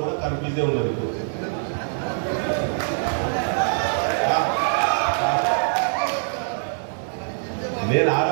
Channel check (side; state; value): left; silent; digital silence